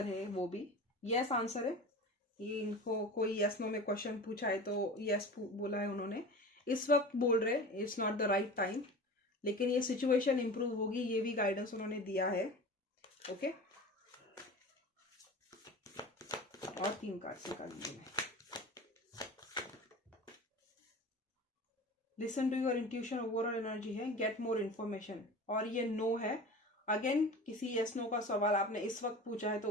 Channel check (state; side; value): normal; both; correlation 0.35